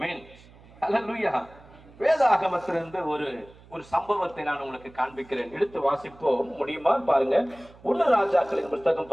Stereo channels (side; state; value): right; noise; hum, 24 dB below the sound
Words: ஹல்லேலூயா. வேதாகமத்திலிருந்து ஒரு சம்பவத்தை நான் உங்களுக்கு காண்பிக்கிறேன். எடுத்து வாசிப்போம், முடியுமா பாருங்க. 1 ராஜாக்களின் புத்தகம்